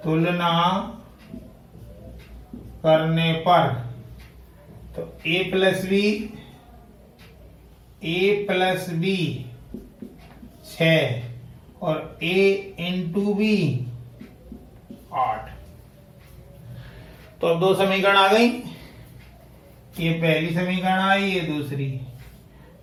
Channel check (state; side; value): identical; both; correlation 1.00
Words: तुलना करने पर तो a प्लस बी 6 और a इंटू बी 8। तो अब दो समीकरण आ गई, ये पहली समीकरण आई, ये दूसरी।